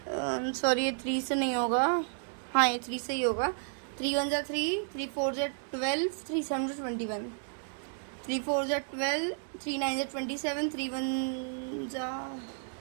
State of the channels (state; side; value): silent; left; 56 dB below the other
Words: सॉरी ये 3 से नहीं होगा, हाँ ये 3 से ही होगा। 3 1 जा 3, 3 4 जा 12, 3 7 जा 21, 3 4 जा 12, 3 9 जा 27, 3 1 जा